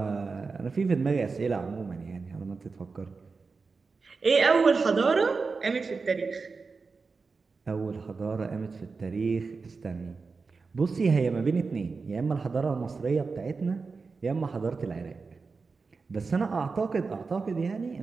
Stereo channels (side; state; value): left; quieter; 4.5 dB